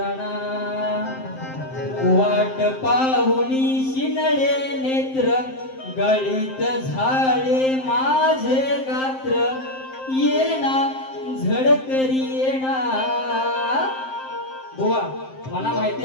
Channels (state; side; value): late; right; 7.6 ms